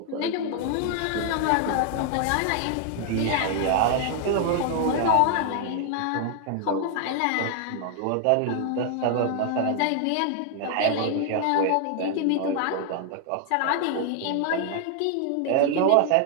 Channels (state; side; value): different; both; correlation 0.00